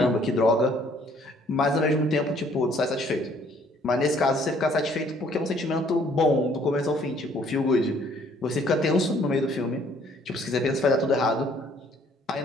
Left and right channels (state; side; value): normal; both; correlation 0.61